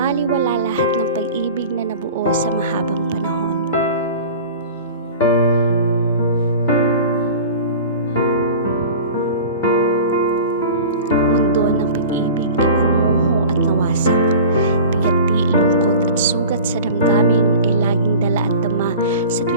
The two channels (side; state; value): both; inverted; correlation -0.38